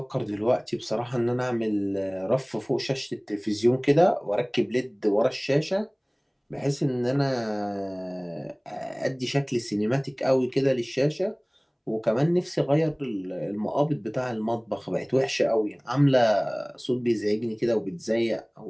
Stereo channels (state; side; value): identical; both; correlation 1.00